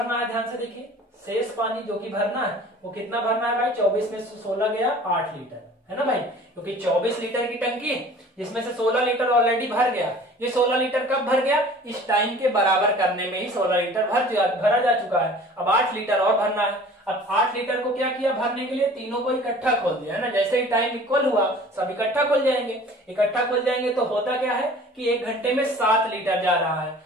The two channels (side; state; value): both; normal; correlation 0.46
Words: है, ध्यान से देखिए, शेष पानी जो कि भरना है वो कितना भरना है भाई, 24 में से 16 गया 8 लीटर, है ना भाई, क्योंकि 24 लीटर की टंकी है जिसमें से 16 लीटर ऑलरेडी भर गया। ये 16 लीटर कब भर गया, इस टाइम के बराबर करने में ही 16 लीटर भरा जा चुका है। अब 8 लीटर और भरना है। अब 8 लीटर को क्या किया भरने के लिए, तीनों को इकट्ठा खोल दिया, है ना। जैसे ही टाइम इक्वल हुआ सब इकट्ठा खुल जाएंगे। इकट्ठा खुल जाएंगे तो होता क्या है कि 1 घंटे में 7 लीटर जा रहा है